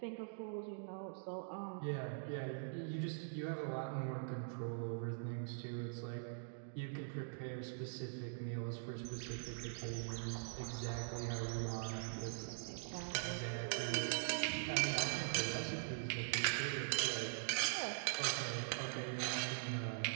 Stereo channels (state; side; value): silent; left; digital silence